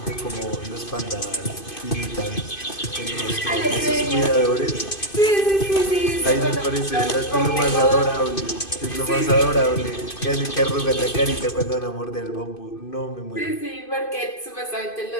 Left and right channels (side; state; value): right; late; 2.5 ms